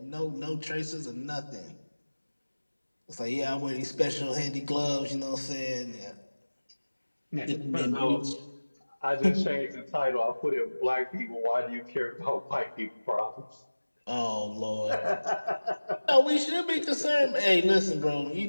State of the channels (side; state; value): both; inverted; correlation -1.00